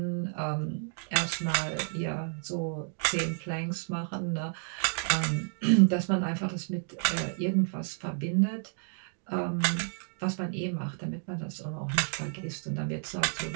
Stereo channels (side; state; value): left; silent; 57 dB below the other